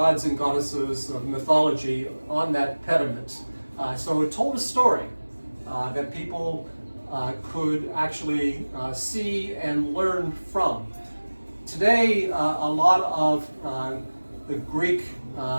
and goddesses of mythology on that pediment. So it told a story that people could actually see and learn from. Today, a lot of the Greek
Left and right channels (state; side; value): inverted; both; correlation -1.00